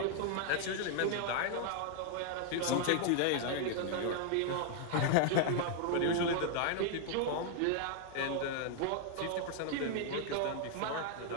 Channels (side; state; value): both; different; correlation 0.00